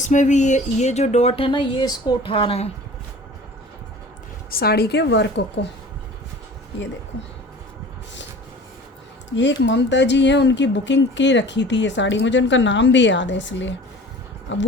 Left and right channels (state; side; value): normal; both; correlation 0.43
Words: भी ये जो डॉट है ना, ये इसको उठा रहा है साड़ी के वर्क को। ये देखो, ये एक ममता जी हैं, उनकी बुकिंग की रखी थी ये साड़ी, मुझे उनका नाम भी याद है इसलिए। अब